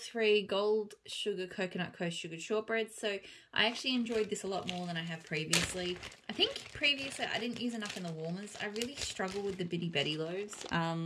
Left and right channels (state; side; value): identical; both; correlation 1.00